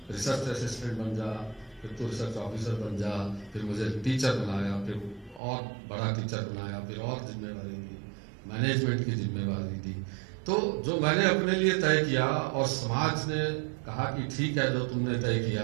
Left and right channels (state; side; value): drops out; left; at 5.4 s